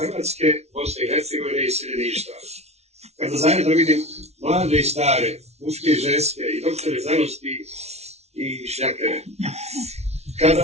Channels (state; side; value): late; left; 0.31 ms